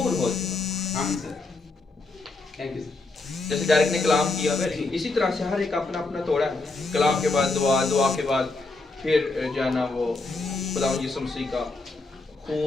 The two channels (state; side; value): quieter; right; 3.4 dB